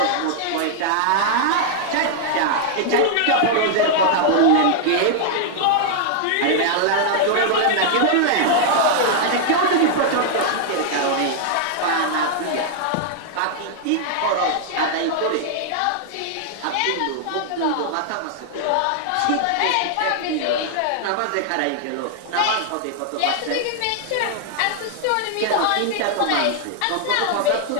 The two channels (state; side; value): different; both; correlation -0.01